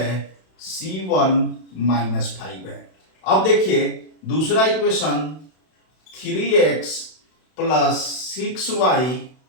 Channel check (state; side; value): late; right; 32 ms